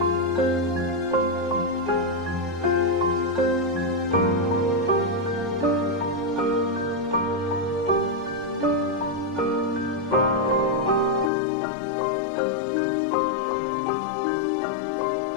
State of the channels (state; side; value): drops out; right; at 11.3 s